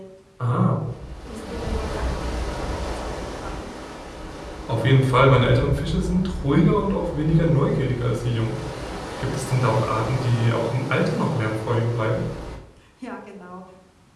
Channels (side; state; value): both; identical; correlation 1.00